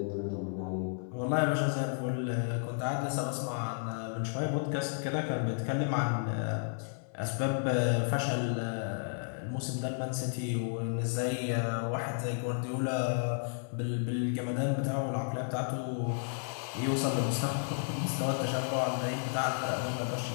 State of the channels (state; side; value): silent; right; 56 dB below the other